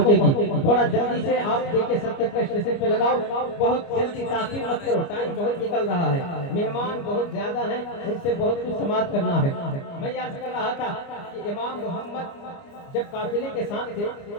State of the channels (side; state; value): right; late; 29 ms